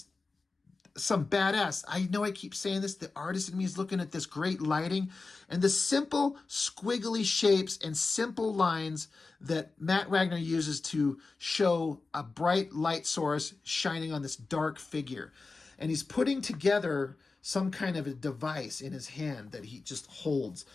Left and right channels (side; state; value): right; quieter; 3.9 dB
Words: some badass. I know I keep saying this. The artist in me is looking at this great lighting and the simple squiggly shapes and simple lines that Matt Wagner uses to show a bright light source shining on this dark figure. And he's putting together some kind of a device in his hand that he just holds.